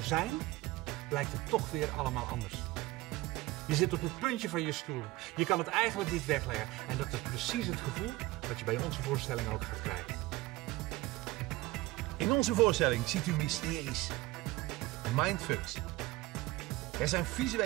zijn, blijkt het toch weer allemaal anders. Je zit op het puntje van je stoel. Je kan het eigenlijk niet wegleggen. En dat is precies het gevoel wat je bij onze voorstelling ook gaat krijgen. In onze voorstelling ziet u mysteries, mindfucks. Er zijn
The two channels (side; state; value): left; quieter; 19.4 dB